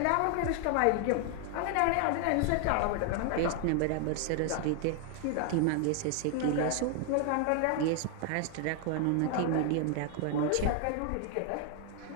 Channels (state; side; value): different; both; correlation 0.00